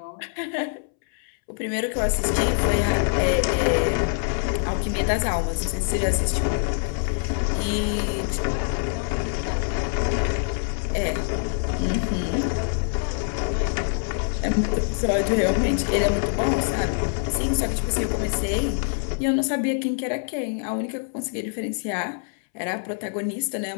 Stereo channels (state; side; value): silent; right; 62 dB below the other